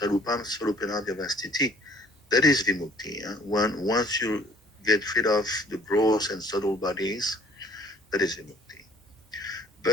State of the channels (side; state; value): both; normal; correlation 0.55